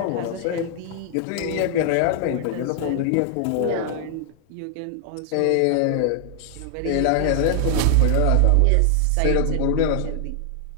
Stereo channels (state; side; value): different; both; correlation 0.00